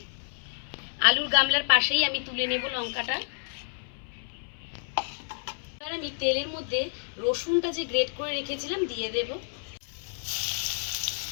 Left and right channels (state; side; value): silent; right; 58 dB below the other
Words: আলুর গামলার পাশেই আমি তুলে নেব লঙ্কাটা। এবার আমি তেলের মধ্যে রসুনটা যে গ্রেট করে রেখেছিলাম দিয়ে দেব।